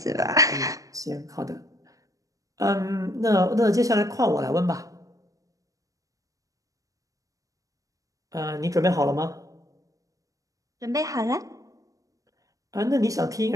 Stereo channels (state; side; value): late; left; 0.16 ms